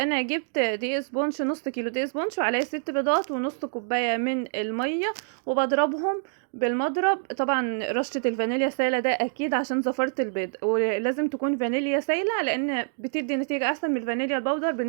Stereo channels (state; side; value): silent; left; digital silence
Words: جبت دقيق سبونش، نص كيلو دقيق سبونش وعليه 6 بيضات ونص كوباية من المية، وبضربهم بالمضرب. طبعا رشة الفانيليا سايلة ده اكيد عشان زفرة البيض، ولازم تكون فانيليا سايلة لان بتدي نتيجة احسن من الفانيليا البودر